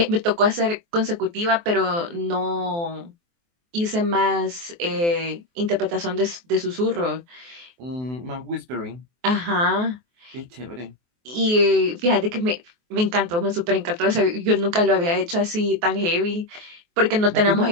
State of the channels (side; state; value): left; late; 23 ms